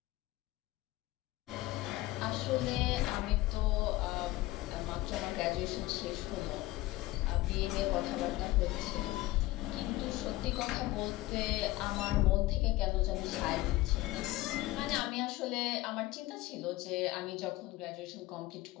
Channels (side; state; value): right; quieter; 18.4 dB